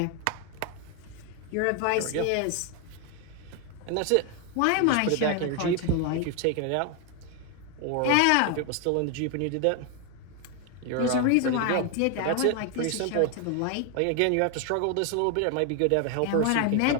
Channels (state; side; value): different; both; correlation 0.01